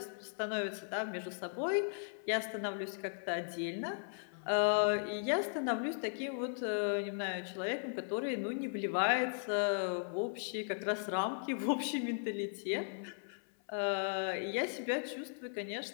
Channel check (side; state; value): right; silent; 53 dB below the other